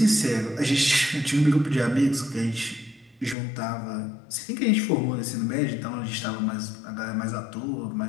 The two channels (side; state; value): right; drops out; at 3.4 s